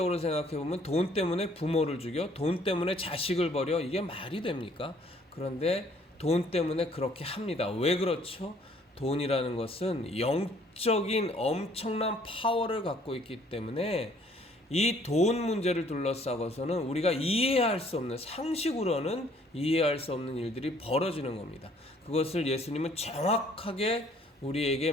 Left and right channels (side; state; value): both; normal; correlation 0.61